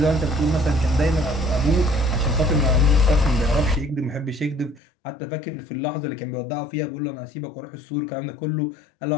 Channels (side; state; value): right; drops out; at 4.8 s